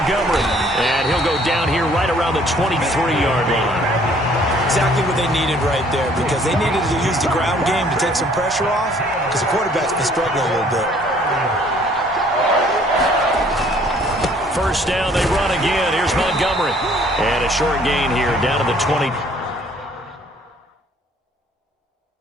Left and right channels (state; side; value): normal; both; correlation 0.59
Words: And he'll go down here right around the 23-yard line. Exactly what they needed right there, because they needed to use the ground game to take some pressure off, because the quarterback's been struggling a little bit. First down, they run again. Here's Montgomery. And a short gain here down to the 20.